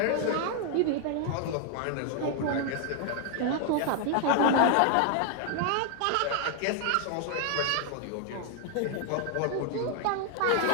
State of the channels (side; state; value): both; different; correlation 0.00